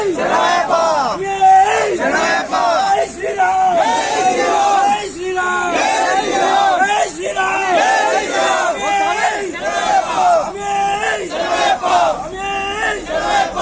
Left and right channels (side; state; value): both; identical; correlation 1.00